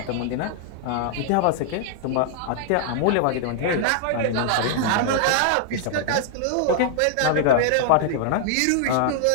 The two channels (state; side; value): different; both; correlation 0.00